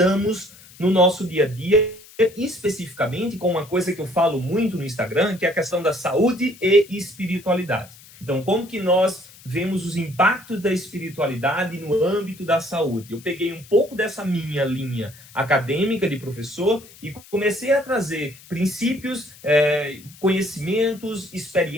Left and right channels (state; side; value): noise; left; hiss, 22 dB below the sound